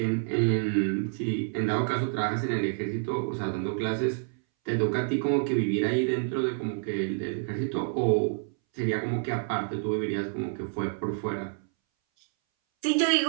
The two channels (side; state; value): left; silent; 59 dB below the other